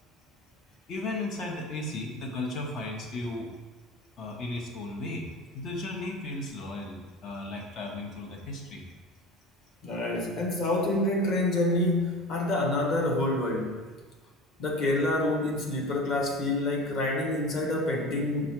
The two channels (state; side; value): normal; both; correlation 0.33